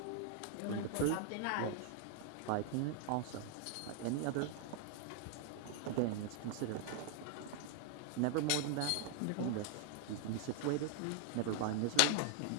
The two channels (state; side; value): different; both; correlation 0.00